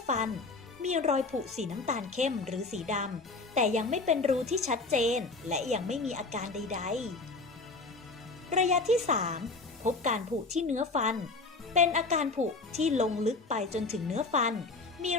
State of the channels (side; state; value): right; quieter; 3.6 dB